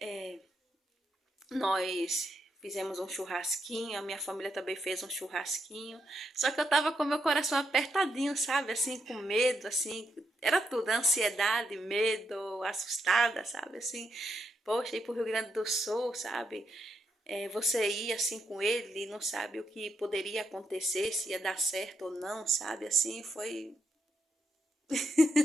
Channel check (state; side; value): normal; both; correlation 0.81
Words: Nós fizemos um churrasquinho, a minha família também fez um churrasquinho. Só que eu tava com meu coração apertadinho, sabe? Assim, com medo, assim. Era tudo, ansiedade, medo, assustada, sabe? Assim, poxa, ir pro Rio Grande do Sul, sabe? Você ir assim com ele e não sabe o que poderia acontecer, se ia dar certo ou não, sabe? Assim, foi